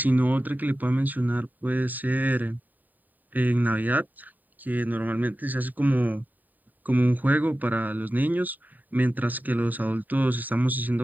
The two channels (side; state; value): left; late; 0.086 ms